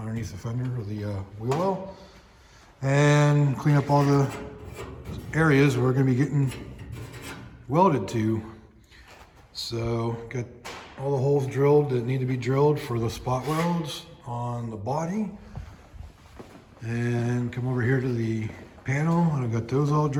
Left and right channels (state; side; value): identical; both; correlation 1.00